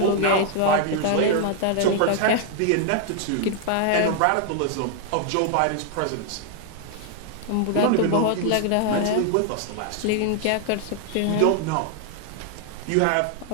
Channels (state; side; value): different; both; correlation 0.00